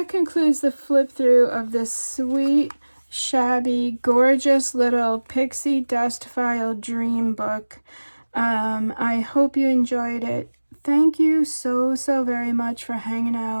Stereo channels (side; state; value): both; inverted; correlation -1.00